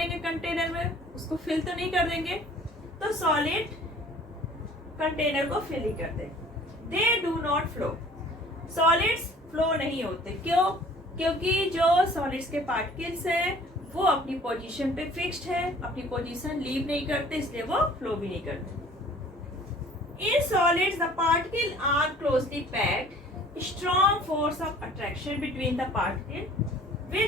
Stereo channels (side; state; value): both; normal; correlation 0.51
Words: कंटेनर में, उसको फिल तो नहीं कर देंगे। तो सॉलिड कंटेनर को फिल ही करते। They do not flow, solids flow नहीं होते, क्यों, क्योंकि जो सॉलिड्स के पार्टिकल्स हैं वो अपनी पोजीशन पे फिक्स्ड है, अपनी पोजीशन लीव नहीं करते, इसलिए वो फ्लो भी नहीं करते। In solids the particle are closely packed, strong force of attraction between the particle